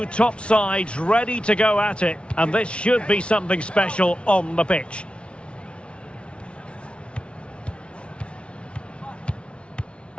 top sides ready to go at it, and this should be something special on the pitch.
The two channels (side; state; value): right; late; 0.059 ms